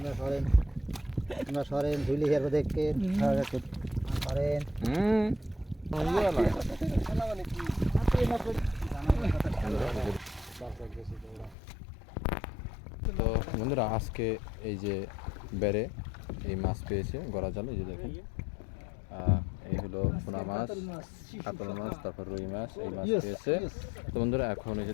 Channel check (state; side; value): drops out; right; at 11.6 s